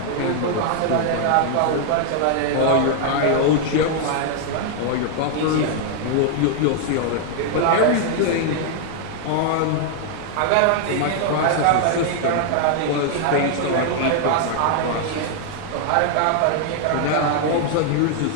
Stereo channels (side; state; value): both; different; correlation 0.00